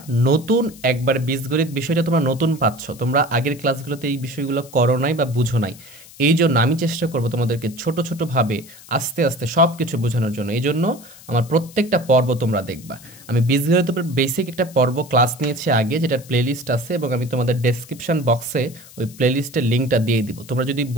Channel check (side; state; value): left; noise; hiss, 20 dB below the sound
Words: নতুন একবার বীজগণিত বিষয়টা তোমরা নতুন পাচ্ছ, তোমরা আগের ক্লাসগুলোতে এই বিষয়গুলো করো নাই বা বুঝো নাই, এই জন্য আমি চেষ্টা করব তোমাদেরকে ছোট ছোটোভাবে আস্তে আস্তে সব কিছু বোঝানোর জন্য। এই জন্য আমার প্রত্যেকটা পর্ব তোমরা দেখবা। আমি বীজগণিতের উপর বেসিক একটা পর্ব ক্লাস নিয়েছি আগে, যেটার প্লেলিস্ট আছে, এবং আমি তোমাদের ডেসক্রিপশন বক্সে ওই প্লেলিস্টের লিঙ্কটা দিয়ে দিব। তোমরা যদি